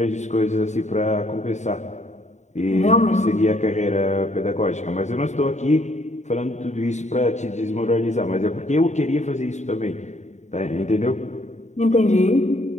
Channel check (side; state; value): right; late; 0.34 ms